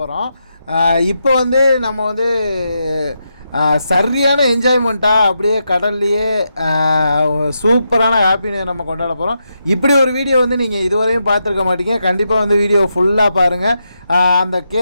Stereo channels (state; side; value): inverted; both; correlation -0.84